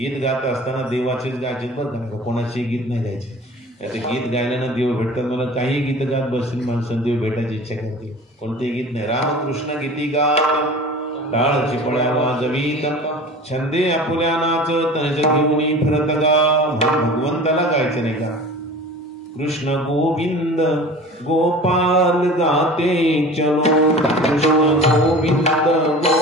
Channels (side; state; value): both; normal; correlation 0.40